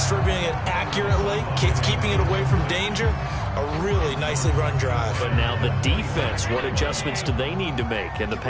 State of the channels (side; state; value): both; identical; correlation 1.00